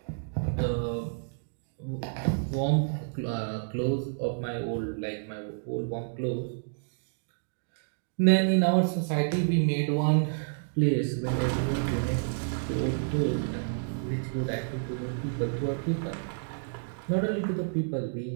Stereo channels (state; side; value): silent; left; digital silence